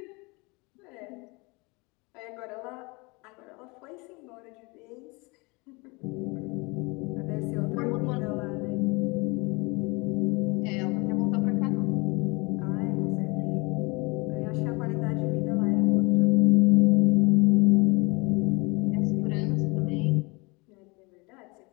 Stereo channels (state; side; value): quieter; right; 27.1 dB